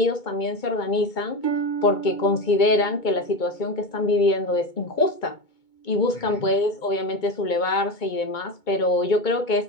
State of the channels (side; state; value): right; late; 2.2 ms